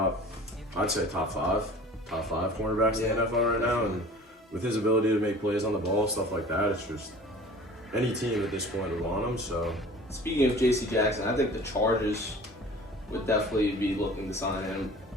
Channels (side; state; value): both; normal; correlation 0.44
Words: five cornerbacks in the NFL right now, and with his ability to make plays on the ball, stuff like that, it's just any team at this point would want him. So, speaking of J.C. Jackson, I think the Chargers would definitely be looking to sign him